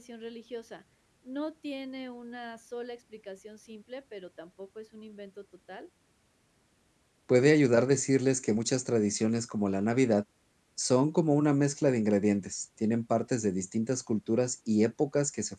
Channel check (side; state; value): both; identical; correlation 1.00